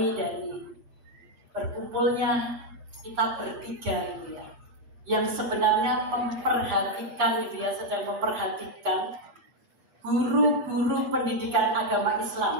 dari berkumpulnya kita bertiga gitu ya, yang sebenarnya memperhatikan gitu ya, sedang memperhatikan guru-guru pendidikan agama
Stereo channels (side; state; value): left; late; 8.5 ms